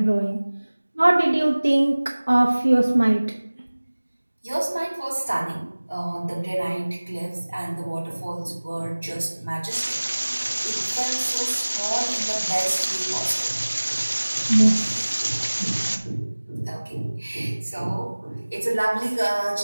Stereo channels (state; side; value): inverted; both; correlation -1.00